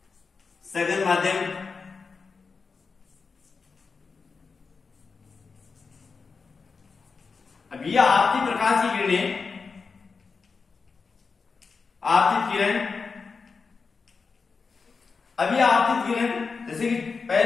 सघन माध्यम। अब ये आपकी प्रकाश की किरणें, आपतित किरण, अभी आपतित किरण जैसे कि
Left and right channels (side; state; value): right; quieter; 4.9 dB